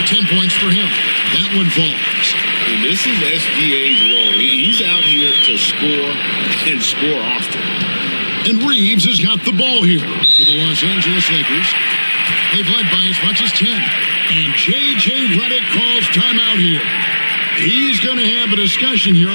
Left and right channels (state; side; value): inverted; both; correlation -1.00